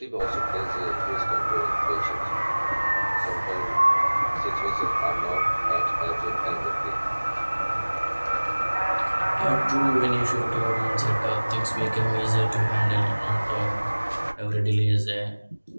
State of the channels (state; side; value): inverted; both; correlation -1.00